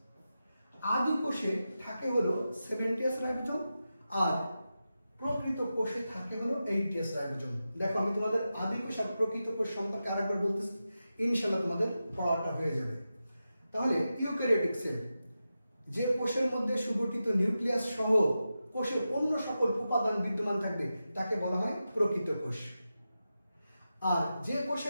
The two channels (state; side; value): inverted; both; correlation -0.91